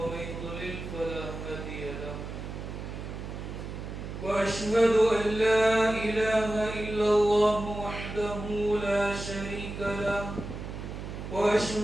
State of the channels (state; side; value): noise; right; hum, 8 dB below the sound